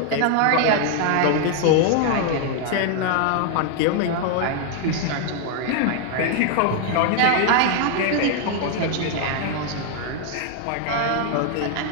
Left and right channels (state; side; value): different; both; correlation 0.00